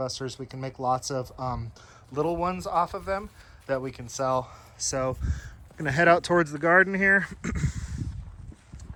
We can make lots of little ones off of them that we can sell. So I'm gonna head out towards the garden here.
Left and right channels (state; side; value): identical; both; correlation 1.00